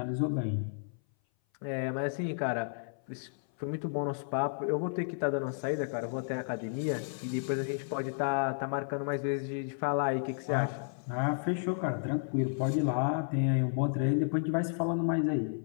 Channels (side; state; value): right; silent; 56 dB below the other